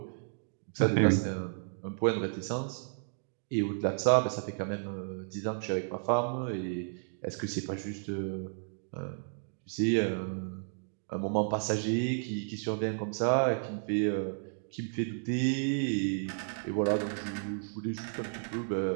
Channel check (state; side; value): silent; left; digital silence